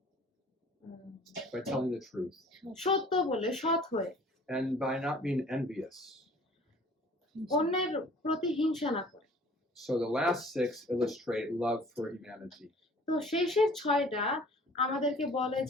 By telling the truth. সত্য বলে, সৎ হয়ে, And by not being envious. অন্যের প্রতি হিংসা না করে। So the last 6 illustrate love for humanity. তো শেষের 6টা আমাদেরকে বলে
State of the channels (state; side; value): normal; both; correlation 0.51